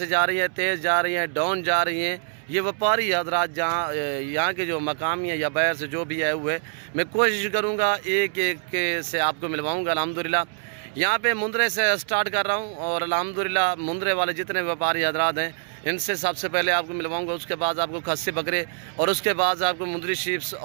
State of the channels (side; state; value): left; silent; 61 dB below the other